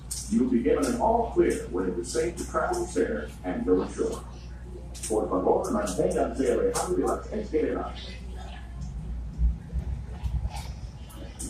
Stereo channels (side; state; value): both; identical; correlation 1.00